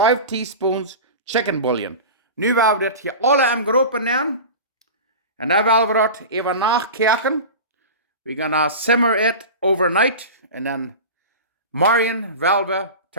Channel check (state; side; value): inverted; both; correlation -0.30